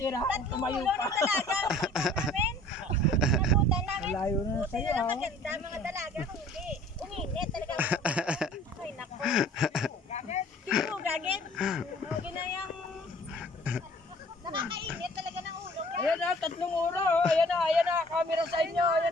Tatlong Tumayo ulo pa. ng dalaga. Nabutan namin. Malayo na Buti sa'yo, na lang ah. maganda mga dalaga. Hindi. Uminit talaga. Ay, nako. Kiro, gagit. Huwag na yung... Nakakainit talaga ng ulo. Ayan na, tatlong ulo. Ayan na, camera sa inyo.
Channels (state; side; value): normal; both; correlation 0.52